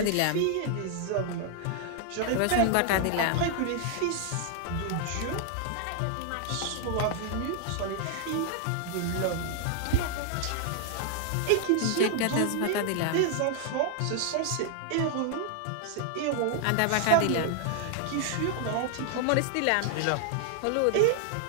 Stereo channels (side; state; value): both; different; correlation 0.00